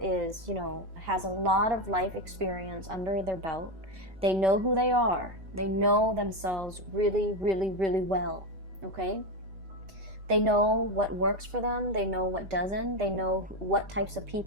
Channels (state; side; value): late; left; 5.6 ms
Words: you know, has a lot of life experience under their belt. They know who they are. They know themselves really, really, really well, okay? They know what works for them. They know what doesn't. They know what types of